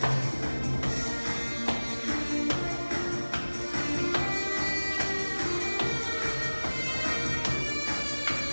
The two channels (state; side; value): inverted; both; correlation -1.00